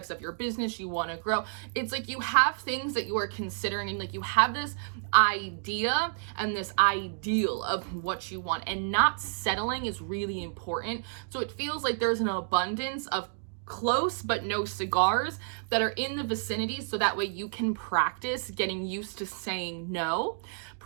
of your business you want to grow. It's like you have things that you are considering, and like you have this idea and this ideal of what you want, and not settling is really important. So it feels like there's an abundance of close but no cigars that are in the vicinity, so that way you can practice getting used to saying no,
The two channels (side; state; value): left; silent; digital silence